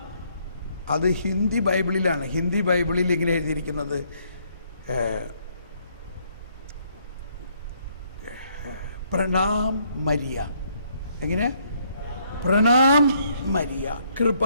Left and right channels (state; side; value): inverted; both; correlation -0.69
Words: അത് ഹിന്ദി ബൈബിളിലാണ്. ഹിന്ദി ബൈബിളിൽ ഇങ്ങനെ എഴുതിയിരിക്കുന്നത് പ്രണാം മരിയ. എങ്ങനെ? പ്രണാം മരിയ,